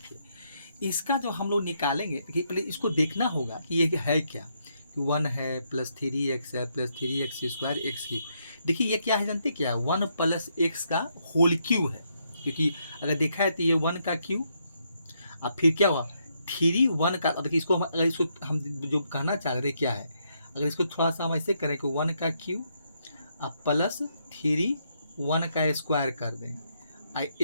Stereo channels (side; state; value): both; inverted; correlation -0.77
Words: इसका जो हम लोग निकालेंगे, देखिए पहले इसको देखना होगा कि ये है क्या, 1 है प्लस 3x है प्लस 3x स्क्वायर x³। देखिए ये क्या है जानते क्या, 1 प्लस x का होल क्यू है, क्योंकि अगर देखा है तो ये 1 का क्यू, अब फिर क्या हुआ 3 1 का। अब देखिए इसको अगर इसको हम जो कहना चाह रहे क्या है, अगर इसको थोड़ा सा हम ऐसे करें कि 1 का क्यू अब प्लस 3 1 का स्क्वायर कर दें,